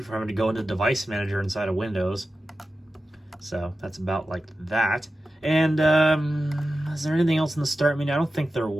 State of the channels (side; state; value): both; normal; correlation 0.93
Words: having to go into Device Manager inside of Windows. So that's about like that. And is there anything else in the start menu? I don't think there